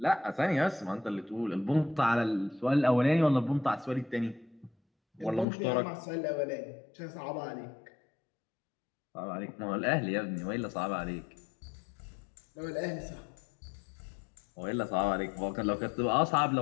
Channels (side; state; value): right; drops out; at 5.5 s